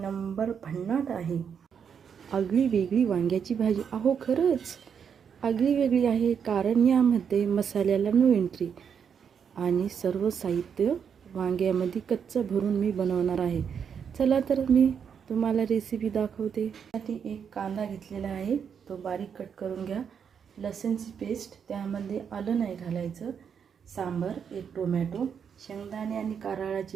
भन्नाट आहे. आगळी वेगळी वांग्याची भाजी. अहो खरंच आगळी वेगळी आहे, कारण यामध्ये मसाल्याला नो एंट्री आणि सर्व साहित्य वांग्यामध्ये कच्चं भरून मी बनवणार आहे. चला तर मी तुम्हाला रेसिपी दाखवते. त्यासाठी एक कांदा घेतलेला आहे, तो बारीक कट करून घ्या. लसूणची पेस्ट, त्यामध्ये आलं नाही घालायचं. सांबार, एक टोमॅटो, शेंगदाणे आणि कारळाची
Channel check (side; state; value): left; quieter; 7.3 dB